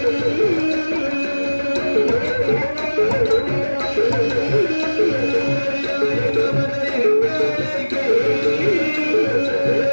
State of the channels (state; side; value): inverted; both; correlation -1.00